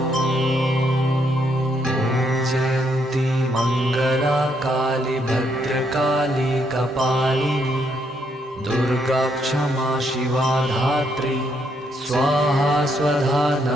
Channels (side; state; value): both; normal; correlation 0.74